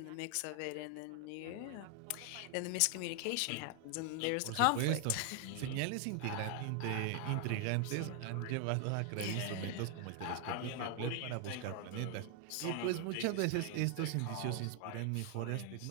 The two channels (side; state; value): both; different; correlation 0.00